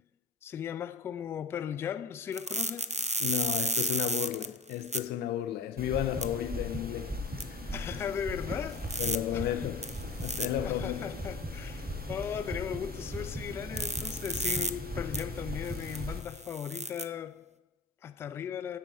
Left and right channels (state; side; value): quieter; right; 3.9 dB